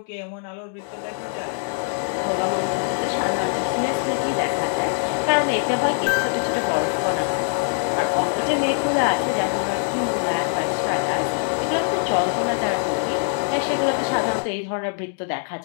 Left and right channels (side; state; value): right; silent; 58 dB below the other